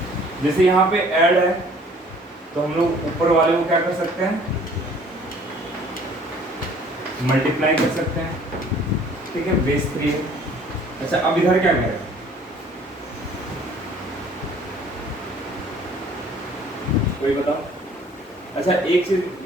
जैसे यहाँ पे ऐड है तो हम लोग ऊपर वाले को क्या कर सकते हैं मल्टीप्लाई कर सकते हैं, ठीक है, बेस 3 है। अच्छा अब इधर क्या करें, कोई बताओ। अच्छा एक चीज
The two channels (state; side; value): normal; both; correlation 0.54